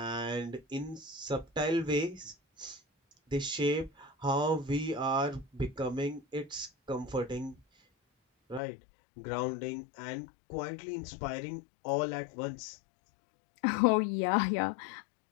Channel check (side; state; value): right; drops out; at 8.6 s